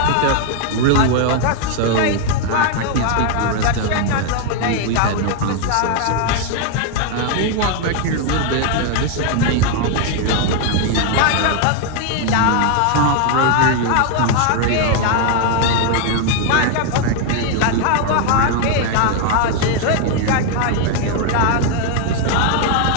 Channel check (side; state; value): both; different; correlation 0.00